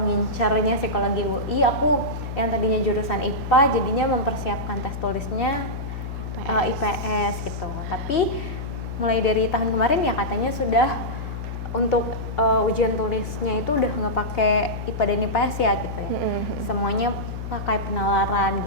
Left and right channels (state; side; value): noise; left; hum, 6 dB below the sound